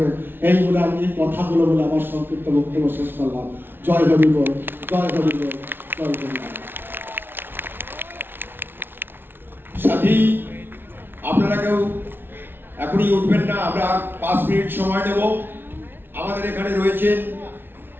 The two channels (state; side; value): late; left; 0.10 ms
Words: এই বলে আমি এই কথাগুলো বলে আমার সংক্ষিপ্ত বক্তব্য শেষ করলাম। জয় হরি বল, জয় হরি বল, জয় হরি বল। সাথী, আপনারা কেউ এখনই উঠবেন না, আমরা 5 মিনিট সময় নেব। আমাদের এখানে রয়েছেন